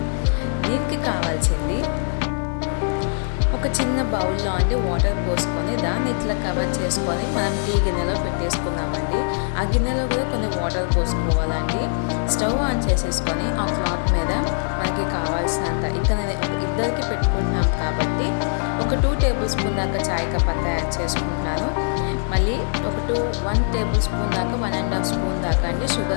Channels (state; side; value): silent; right; digital silence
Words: దీనికి కావాల్సింది ఒక చిన్న బౌల్లో వాటర్ పోసుకొని దాన్ని ఇట్లా కవర్ చేసుకొని మనం టీ గిన్నెలో పెట్టేసుకుందామండి. ఆ గిన్నెలో కూడా కొన్ని వాటర్ పోసుకోవాలండి. స్టవ్ ఆన్ చేసేసుకొని ఆ క్లాత్ మీద మనకి కావాల్సినంత, ఇక్కడ నేను ఒక ఇద్దరికి పెట్టుకుంటున్నాం కాబట్టి ఒక 2 టేబుల్ స్పూన్ దాకా చాయ్ పత్తా యాడ్ చేసుకుంటున్నాను. మళ్ళీ ఒక 1 టేబుల్ స్పూన్ దాకా 1.5 స్పూన్ దాకా